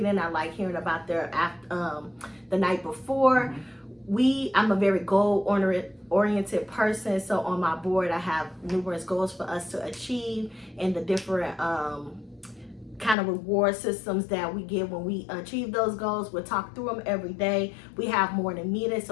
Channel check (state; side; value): drops out; right; at 13.2 s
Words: I like hearing about their the night before. I'm a very goal-oriented person, so on my board I have numerous goals for us to achieve, and the different kind of reward systems that we get when we achieve those goals. We'll talk through them every day. We have morning meetings